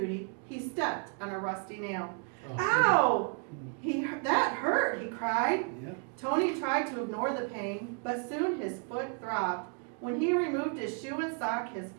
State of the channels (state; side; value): quieter; left; 40.0 dB